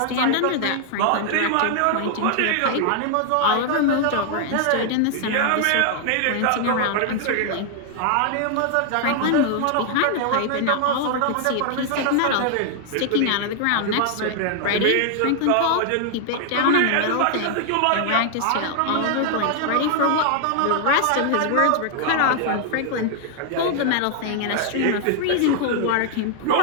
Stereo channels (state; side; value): different; both; correlation 0.00